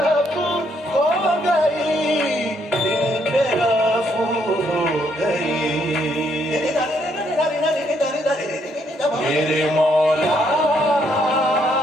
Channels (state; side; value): normal; both; correlation 0.72